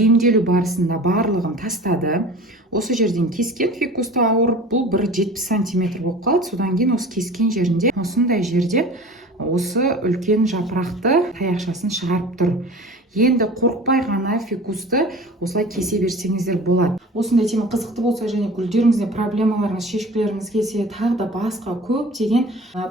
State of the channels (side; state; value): both; normal; correlation 0.40